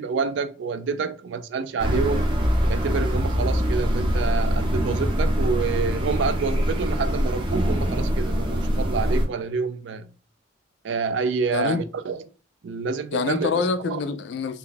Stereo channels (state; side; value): normal; both; correlation 0.55